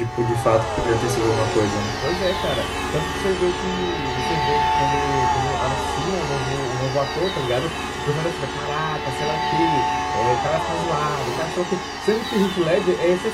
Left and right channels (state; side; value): identical; both; correlation 1.00